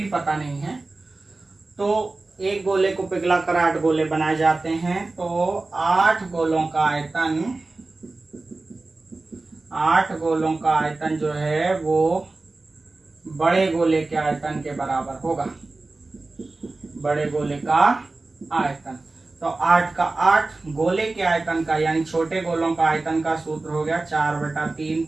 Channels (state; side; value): quieter; left; 3.3 dB